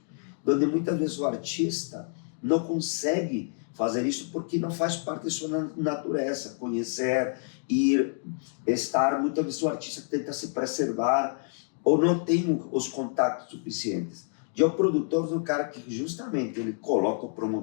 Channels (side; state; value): right; silent; 59 dB below the other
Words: onde muitas vezes o artista não consegue fazer isso porque não faz parte da sua natureza, conhecer, ir, estar. Muitas vezes o artista tenta se preservar ou não tem os contatos suficientes. E o produtor do cara que justamente ele coloca